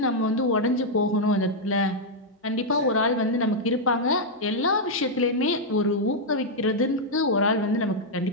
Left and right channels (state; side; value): normal; both; correlation -0.03